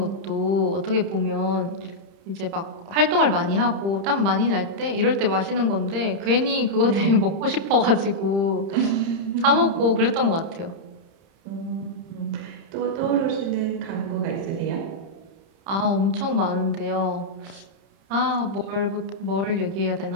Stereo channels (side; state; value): left; late; 30 ms